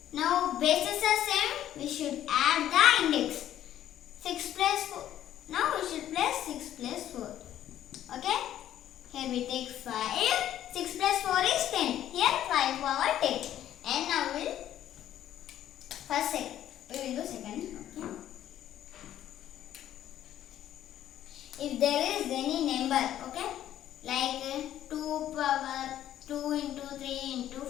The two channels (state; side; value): quieter; right; 11.8 dB